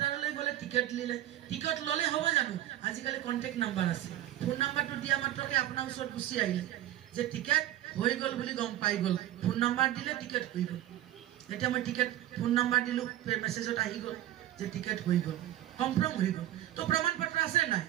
গ'লে টিকেট লিলে টিকেট ল'লে হ'ব জানো আজিকালি কণ্টেক্ট নাম্বাৰ আছে ফোন নাম্বাৰটো দিয়া মাত্ৰকে আপোনাৰ ওচৰত গুচি আহিলে যে টিকেট হৈ গ'ল বুলি গম পাই গ'ল ফোন নাম্বাৰ দিলে টিকেট হৈ গ'ল এতিয়া মই টিকেট ফোন নাম্বাৰ দিলোঁ মেছেজত আহি গ'ল যে টিকেট হৈ গ'ল কনফাৰ্ম হৈ গ'ল তো প্ৰমাণ পত্ৰ আছে নাই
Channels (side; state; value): left; quieter; 13.5 dB